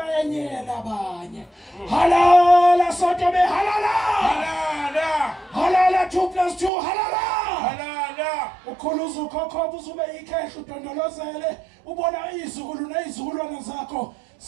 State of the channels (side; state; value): left; drops out; at 6.7 s